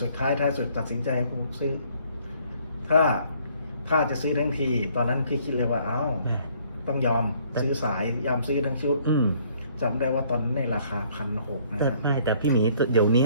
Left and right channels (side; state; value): both; inverted; correlation -0.62